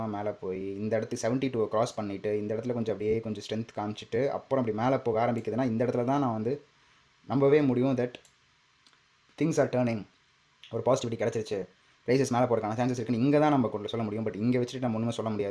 மேலே போய் இந்த இடத்துக்கு 72 கிராஸ் பண்ணிவிட்டு இந்த இடத்துல கொஞ்சம் அப்படியே கொஞ்சம் ஸ்ட்ரென்த் காமிச்சிட்டு அப்புறம் அப்படி மேலே போக ஆரம்பிக்குதுன்னா இந்த இடத்துல தான் நான் வந்து நம்பவே முடியும் தட் திங்ஸ் ஆர் டேர்னிங், ஒரு பாசிட்டிவிட்டி கிடச்சிருச்சு, ப்ரைஸஸ் மேலே போகிறதுக்கான சான்சஸ் இருக்குன்னு இங்கே தான் நம்ம கொண்டு சொல்ல முடியும். பட் இங்கே வச்சுட்டு நம்ம ஒன்றுமே சொல்ல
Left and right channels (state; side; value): identical; both; correlation 1.00